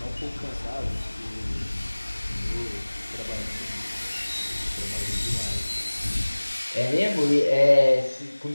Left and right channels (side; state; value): both; inverted; correlation -1.00